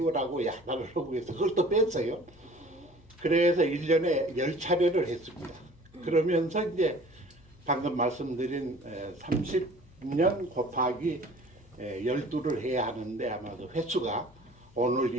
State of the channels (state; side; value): noise; left; hum, 26 dB below the sound